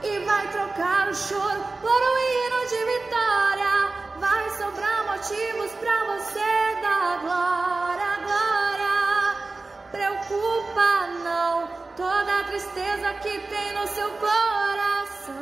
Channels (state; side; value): quieter; left; 3.5 dB